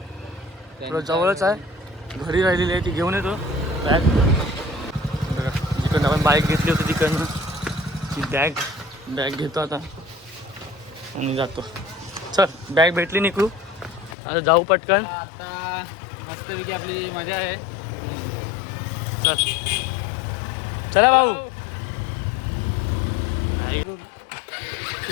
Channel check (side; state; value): right; drops out; at 14.2 s